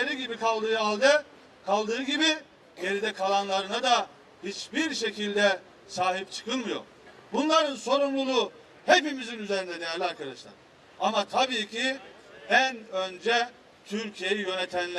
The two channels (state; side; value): identical; both; correlation 1.00